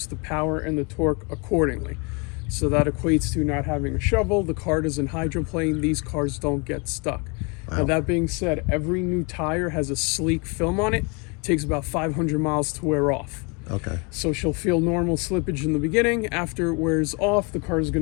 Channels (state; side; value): quieter; right; 32.0 dB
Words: the power and the torque accordingly. So that equates to not having a shovel. The car doesn't hydroplane. These cars don't get stuck. Wow. Now, that being said, every new tire has a sleek film on it. It takes about 500 miles to wear off. Okay. So she'll feel normal slippage in the beginning. After it wears off, the car is going